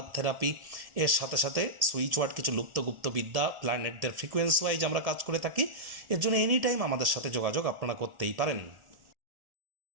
therapy, এর সাথে সাথে সুইচ ওয়ার্ড, কিছু লুপ্তগুপ্ত বিদ্যা, প্ল্যানেটদের ফ্রিকোয়েন্সি ওয়াইজ আমরা কাজ করে থাকি। এর জন্য এনি টাইম আমাদের সাথে যোগাযোগ আপনারা করতেই পারেন।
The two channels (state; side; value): late; left; 1.7 ms